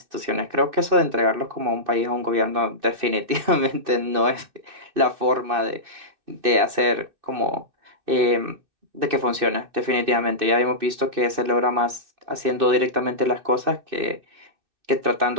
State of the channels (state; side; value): late; left; 2.6 ms